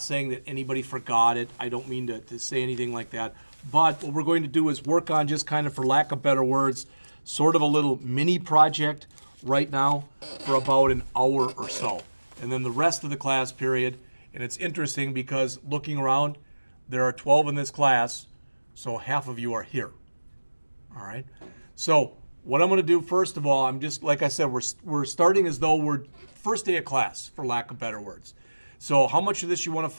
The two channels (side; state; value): both; inverted; correlation -1.00